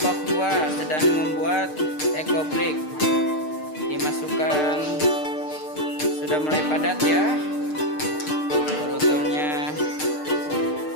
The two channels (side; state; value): right; late; 6.6 ms